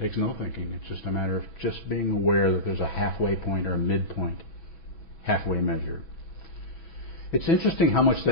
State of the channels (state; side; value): late; right; 6.1 ms